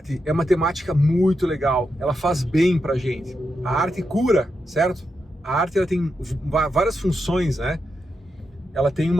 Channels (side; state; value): both; normal; correlation 0.86